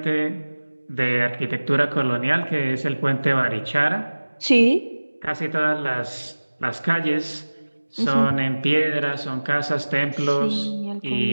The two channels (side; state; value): both; inverted; correlation -1.00